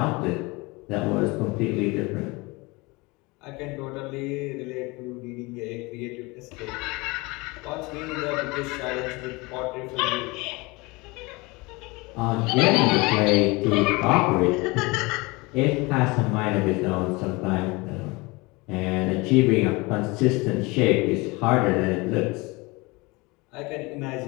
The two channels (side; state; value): right; quieter; 24.7 dB